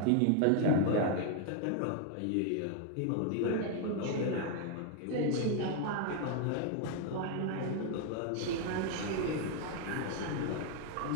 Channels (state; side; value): different; both; correlation 0.00